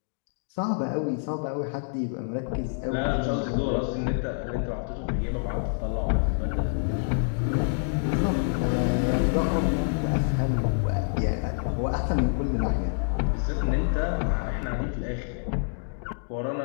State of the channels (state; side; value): silent; right; digital silence